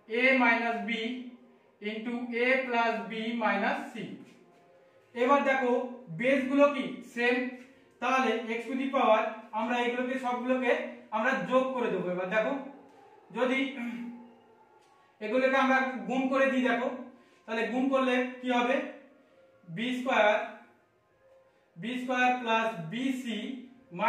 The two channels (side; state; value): both; identical; correlation 1.00